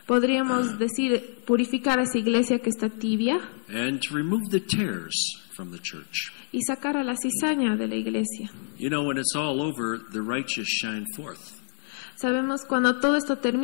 Podríamos decir purificar a esa iglesia que está tibia. And to remove the tares from the church. y sacar a la cizaña de la iglesia. You know, when it's all over, the righteous shine forth. Sabemos cuando todo esto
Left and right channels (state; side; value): silent; right; 56 dB below the other